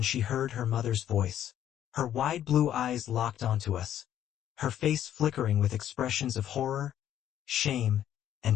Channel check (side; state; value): right; quieter; 11.0 dB